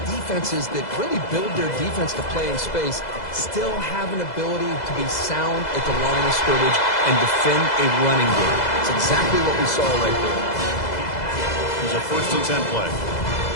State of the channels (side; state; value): right; late; 2.0 ms